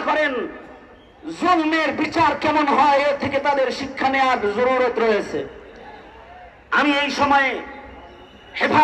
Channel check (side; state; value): both; identical; correlation 1.00